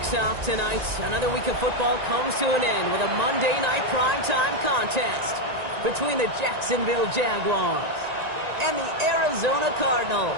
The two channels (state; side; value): late; left; 1.9 ms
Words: off tonight, another week of football comes to an end with a Monday Night Primetime contest between the Jacksonville Jaguars and the Arizona Cardinals.